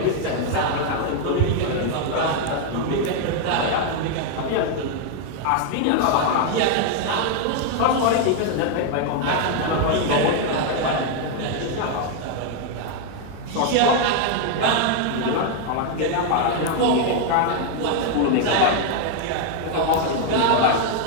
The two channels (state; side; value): different; both; correlation 0.00